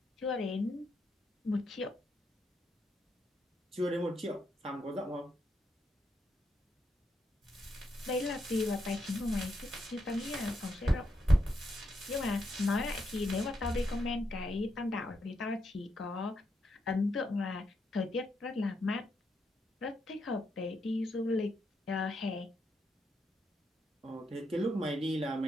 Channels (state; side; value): normal; both; correlation 0.81